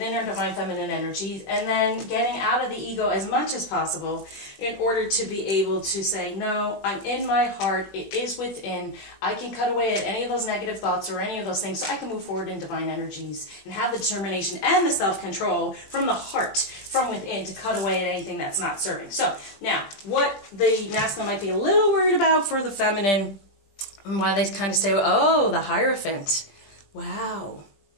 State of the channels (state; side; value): late; right; 20 ms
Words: our divine feminine energies, and then getting out of the ego as much as possible in order to be able to say, no, I'm in my heart, it is within, I can cut away at any of those negative thoughts or any of those things so I can move forward in divine energies and have the determination and the self-control from the heart, from within, to cut away at anything that's not serving. So, now, what the masculine might be a little worried about for the feminine, and why they kind of say, oh, the Hierophant. Wow.